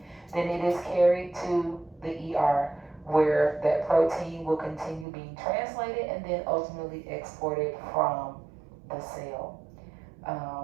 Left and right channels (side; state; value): left; drops out; at 5.1 s